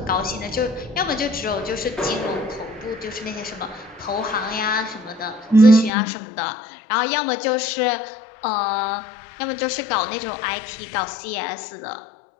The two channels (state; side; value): drops out; right; at 5.9 s